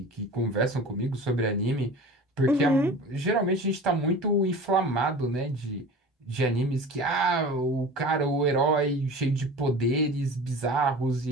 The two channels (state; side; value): normal; both; correlation 0.37